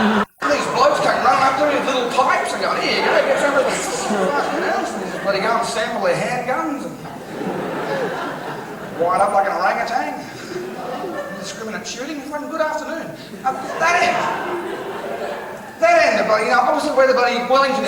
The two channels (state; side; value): identical; both; correlation 1.00